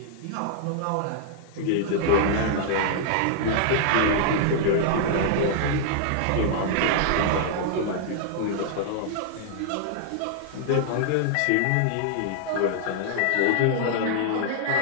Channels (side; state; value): both; different; correlation -0.01